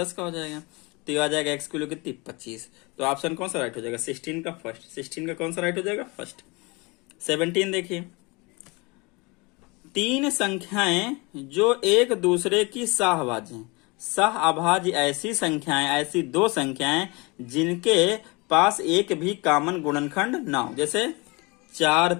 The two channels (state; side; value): quieter; right; 26.8 dB